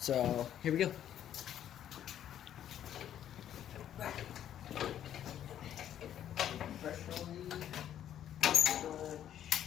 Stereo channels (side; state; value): right; quieter; 10.6 dB